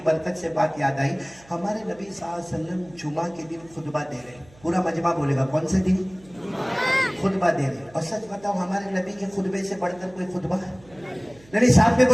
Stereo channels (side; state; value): right; noise; hum, 26 dB below the sound